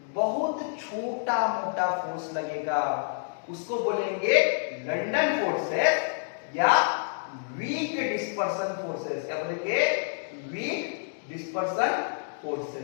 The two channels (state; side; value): silent; right; digital silence